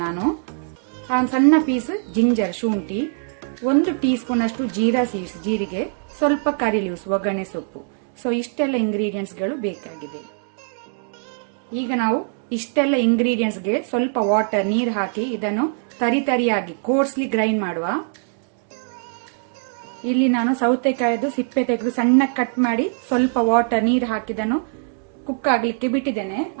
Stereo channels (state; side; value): silent; left; digital silence